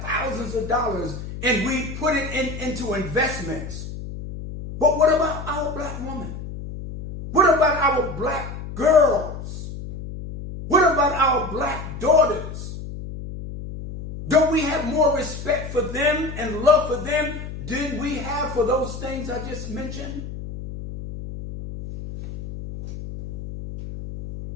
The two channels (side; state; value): left; noise; hum, 9 dB below the sound